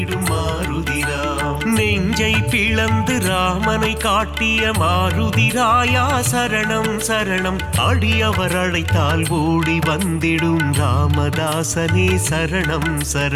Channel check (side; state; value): both; identical; correlation 1.00